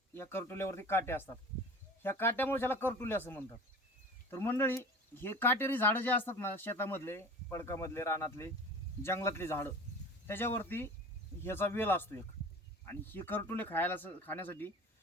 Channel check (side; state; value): both; normal; correlation 0.38